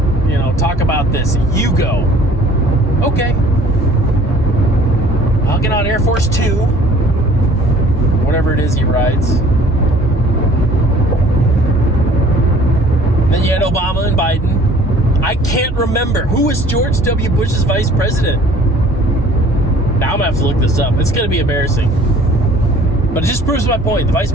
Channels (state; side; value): normal; both; correlation 0.52